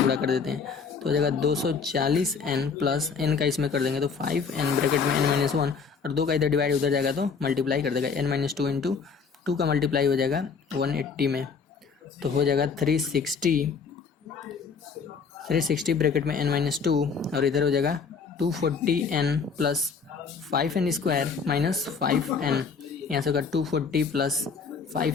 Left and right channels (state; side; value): quieter; right; 5.6 dB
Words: कर देते हैं, तो हो जाएगा 240n प्लस n का इसमें कर देंगे तो 5n ब्रैकेट में n-1, और 2 का इधर डिवाइड उधर जाएगा तो मल्टीप्लाई कर देगा, n-2 इंटू 2 का मल्टीप्लाई हो जाएगा 180 में, तो हो जाएगा 360 ब्रैकेट में n-2, और इधर हो जाएगा 240n plus 5n square minus 5n, यहाँ से होगा 240 plus